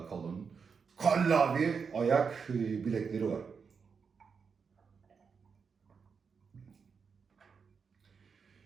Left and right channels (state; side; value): quieter; left; 5.8 dB